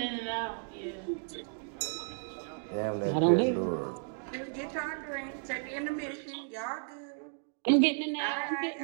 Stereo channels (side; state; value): left; silent; 55 dB below the other